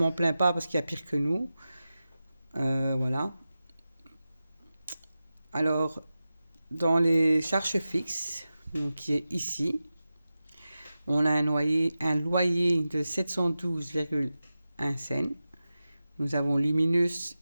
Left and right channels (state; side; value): inverted; both; correlation -0.94